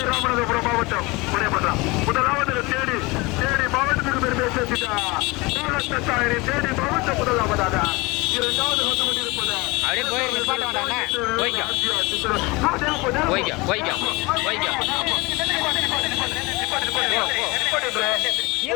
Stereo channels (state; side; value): quieter; right; 24.2 dB